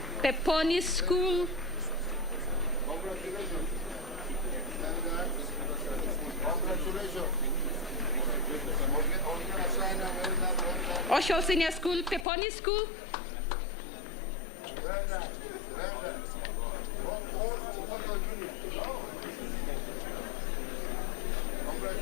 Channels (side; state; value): right; drops out; at 12.2 s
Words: Peponi School, Oshol Senior School, Peponi School,